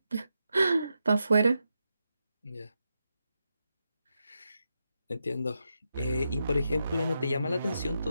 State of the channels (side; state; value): both; inverted; correlation -0.86